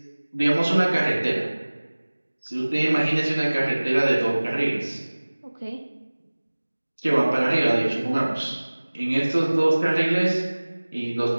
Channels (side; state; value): both; inverted; correlation -1.00